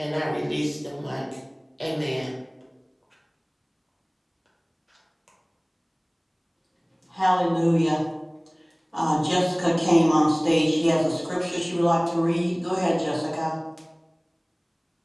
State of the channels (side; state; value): both; identical; correlation 1.00